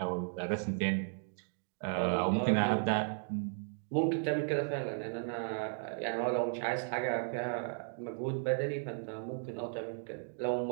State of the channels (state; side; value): silent; left; digital silence